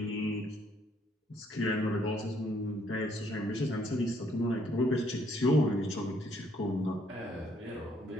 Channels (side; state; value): both; normal; correlation 0.68